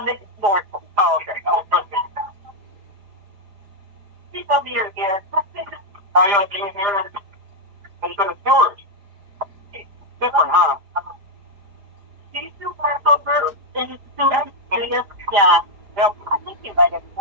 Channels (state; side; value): late; left; 4.9 ms